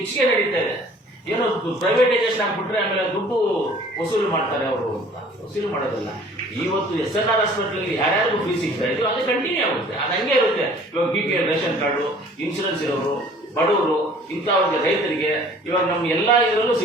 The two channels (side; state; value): both; normal; correlation 0.52